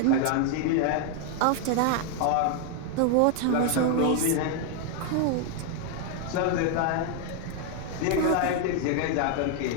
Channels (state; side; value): different; both; correlation 0.00